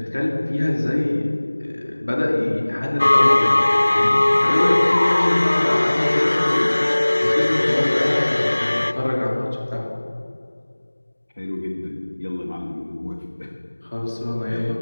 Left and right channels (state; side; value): inverted; both; correlation -1.00